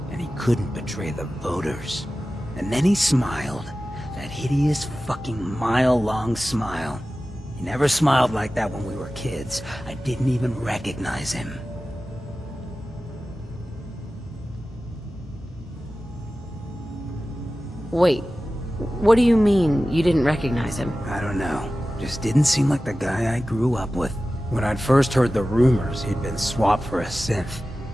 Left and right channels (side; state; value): both; normal; correlation 0.95